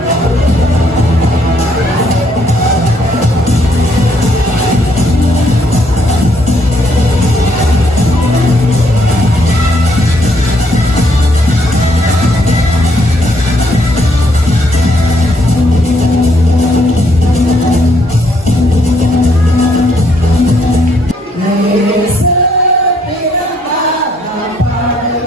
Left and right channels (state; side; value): normal; both; correlation 0.70